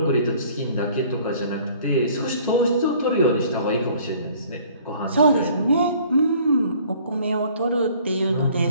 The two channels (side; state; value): both; inverted; correlation -0.55